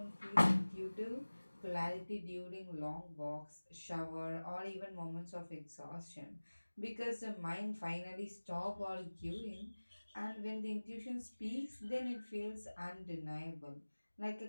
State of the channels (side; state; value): both; inverted; correlation -1.00